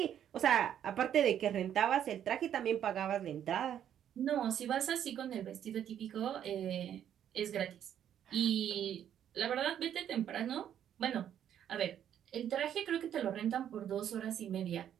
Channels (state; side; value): quieter; left; 9.9 dB